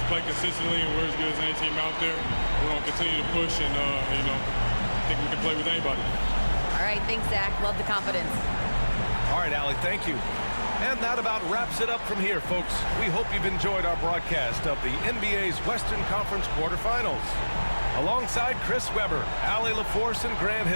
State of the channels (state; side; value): inverted; both; correlation -1.00